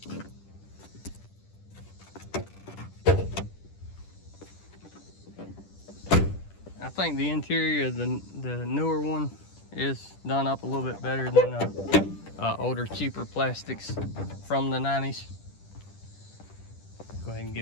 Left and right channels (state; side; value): late; right; 10 ms